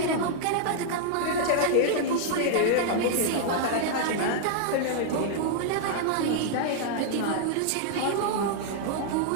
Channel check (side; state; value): both; different; correlation -0.01